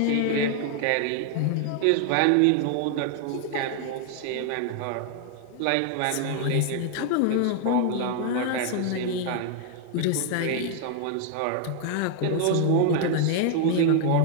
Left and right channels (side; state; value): both; different; correlation 0.00